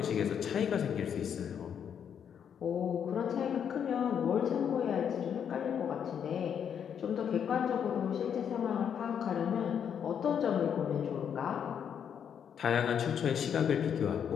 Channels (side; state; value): right; quieter; 8.1 dB